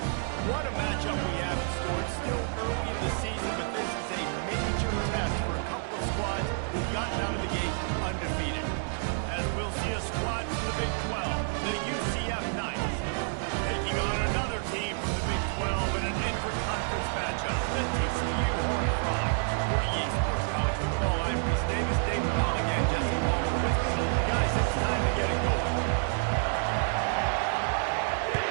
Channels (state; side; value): silent; left; 58 dB below the other